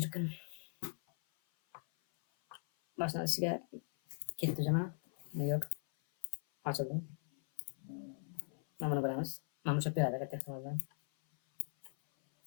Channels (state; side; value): silent; right; 52 dB below the other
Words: Başlanışıga ketdi jama. Yo'q. Ochildi. Mana buni bilamiz. Mana bu beradi katta ehtimol bilan.